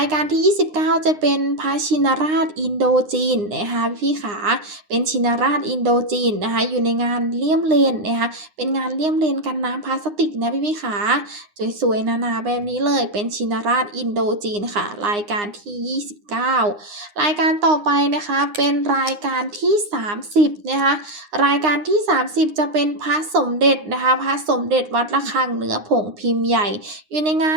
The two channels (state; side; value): late; left; 9.7 ms